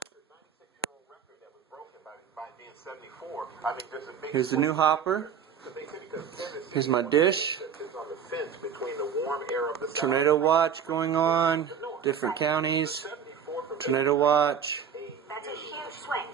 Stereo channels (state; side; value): quieter; left; 7.6 dB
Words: Here's the new hopper. Here's my dish. Tornado watch going on. Different counties. Tornado watch. That's a huge